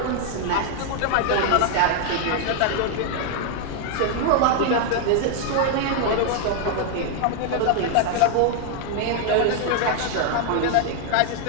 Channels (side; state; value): both; different; correlation 0.00